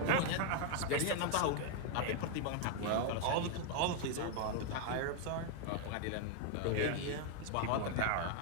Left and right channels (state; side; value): different; both; correlation 0.00